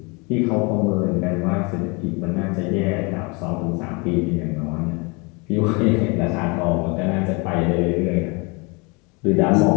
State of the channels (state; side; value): quieter; right; 29.5 dB